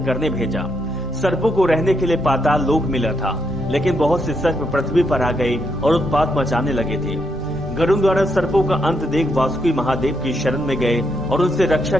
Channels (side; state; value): both; normal; correlation 0.79